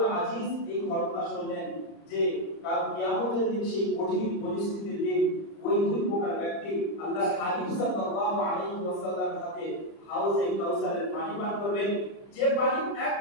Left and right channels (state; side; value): late; right; 30 ms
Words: আজিজ এই ঘটনা শুনলেন যে কাল কিয়ামতের দিন সেই কঠিন পরিস্থিতির দিন ওই দুই প্রকার ব্যক্তি আল্লাহর হাবিব সাল্লাল্লাহু আলাইহি ওয়াসাল্লামের হাতে হাউজে কাউসারের পানি পান করবেন, যে পানি